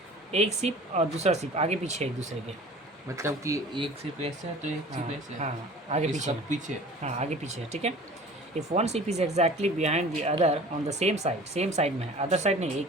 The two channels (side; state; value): both; normal; correlation 0.43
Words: एक सीप और दूसरा सीप आगे पीछे एक दूसरे के, मतलब कि एक सीप ऐसे है तो एक सीप ऐसे है। हाँ आगे पीछे है। पीछे, हाँ आगे पीछे है, ठीक है। इफ़ वन सीप is exactly behind the other on the same side, same side में है, अदर साइड नहीं,